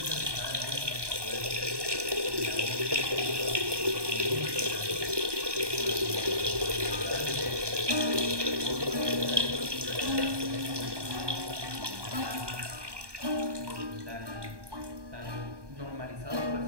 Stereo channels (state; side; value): late; left; 1.2 ms